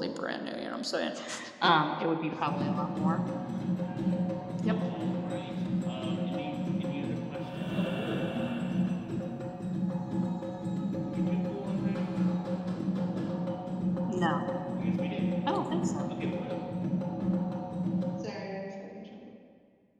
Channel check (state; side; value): identical; both; correlation 1.00